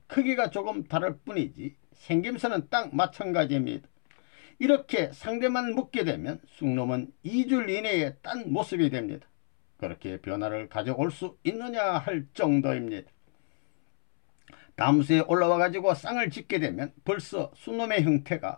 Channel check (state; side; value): silent; right; 59 dB below the other